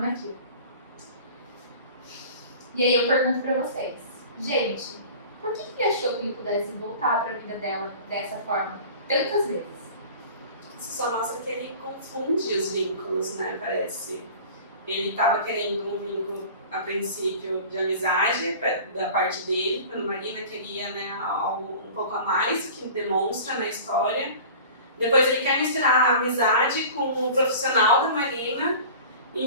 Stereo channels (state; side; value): inverted; both; correlation -0.41